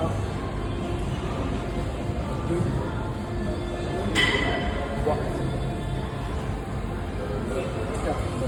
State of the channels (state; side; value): identical; both; correlation 1.00